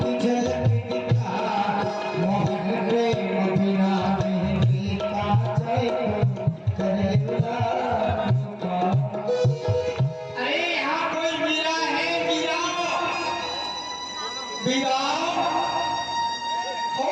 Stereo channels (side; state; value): both; identical; correlation 1.00